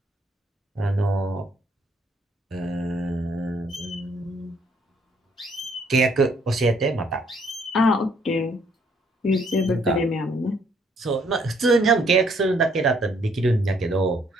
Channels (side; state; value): both; normal; correlation 0.67